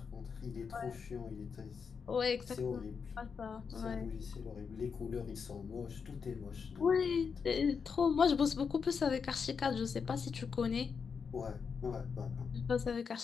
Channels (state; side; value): quieter; right; 5.9 dB